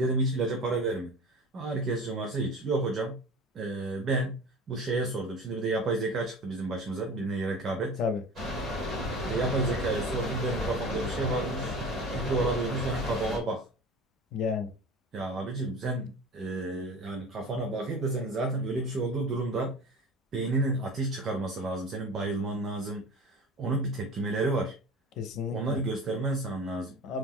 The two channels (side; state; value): both; normal; correlation 0.36